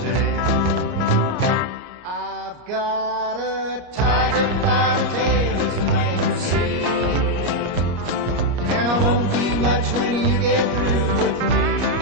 tail. I've got a tiger by the tail, it's plain to see, and I won't be much when you get through with me.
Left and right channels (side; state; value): left; late; 34 ms